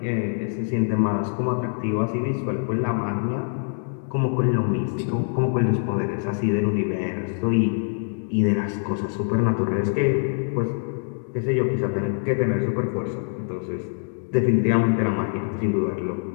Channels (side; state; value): right; silent; 62 dB below the other